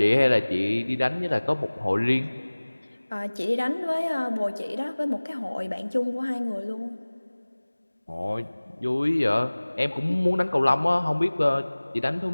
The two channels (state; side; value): inverted; both; correlation -1.00